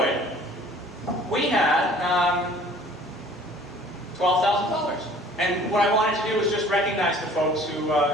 it, we had $12,000. And what I wanted to do was just recognize the folks who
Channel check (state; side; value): normal; both; correlation 0.51